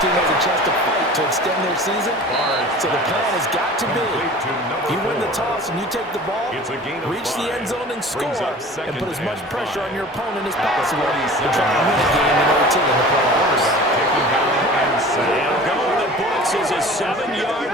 team has a chance to fight to extend their season. So the plan has got to be, you win the toss and you take the ball, reach the end zone and score, and put as much pressure on your opponent as possible to try and win a game in OT in the playoffs. And going the books is a 7-yard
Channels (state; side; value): normal; both; correlation 0.41